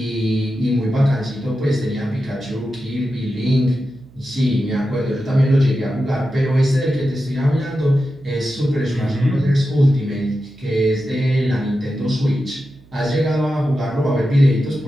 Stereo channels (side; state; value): right; noise; hum, 27 dB below the sound